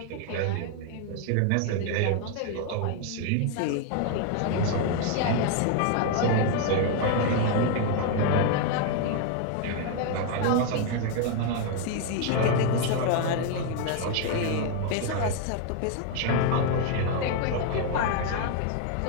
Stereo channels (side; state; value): both; different; correlation 0.00